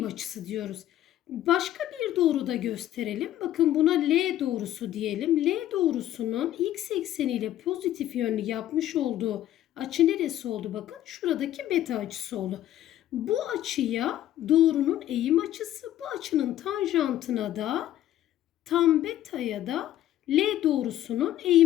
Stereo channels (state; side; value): quieter; right; 12.8 dB